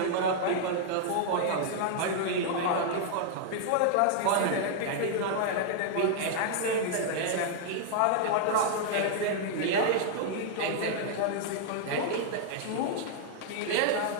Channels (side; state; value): both; different; correlation -0.01